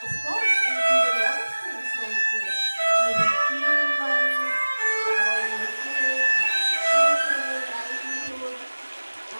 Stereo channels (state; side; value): inverted; both; correlation -1.00